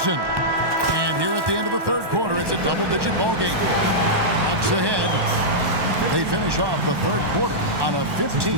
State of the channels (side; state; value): left; late; 1.1 ms